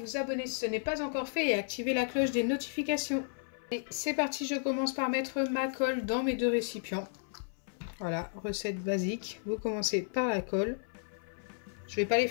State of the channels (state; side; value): silent; right; 56 dB below the other